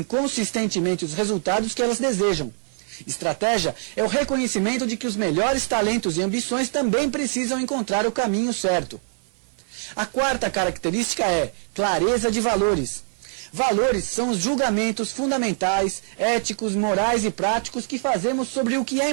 consistentemente os resultados que elas desejam. Estratégia é o reconhecimento de que os melhores talentos e ambições também precisam encontrar o caminho certo. A quarta característica é clareza de valores. Valores são os julgamentos fundamentais, éticos, morais e práticos que fazemos sobre o que é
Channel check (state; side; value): silent; left; 55 dB below the other